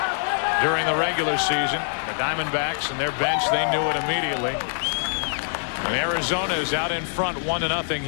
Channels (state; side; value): silent; right; digital silence